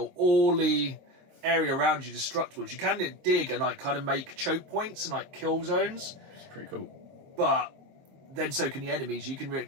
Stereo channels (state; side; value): late; left; 22 ms